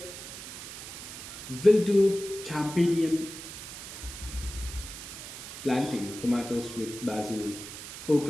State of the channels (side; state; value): right; noise; hiss, 11 dB below the sound